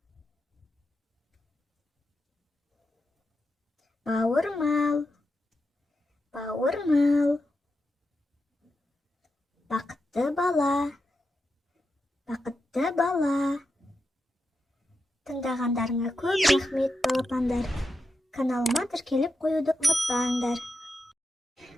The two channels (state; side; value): normal; both; correlation 0.88